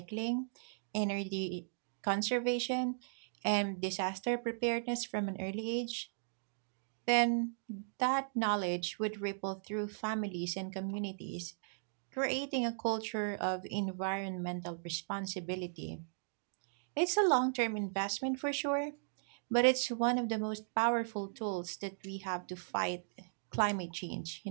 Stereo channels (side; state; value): left; silent; digital silence